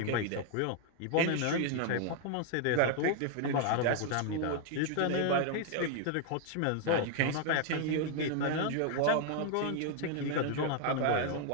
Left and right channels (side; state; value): both; different; correlation 0.00